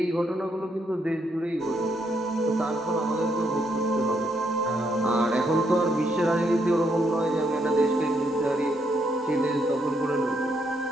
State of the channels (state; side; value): normal; both; correlation 0.75